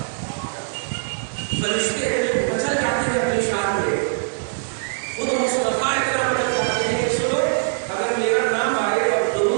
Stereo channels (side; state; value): left; silent; 64 dB below the other